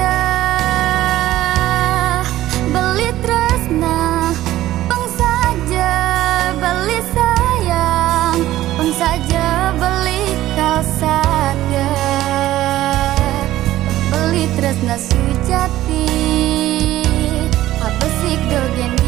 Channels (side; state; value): left; quieter; 14.7 dB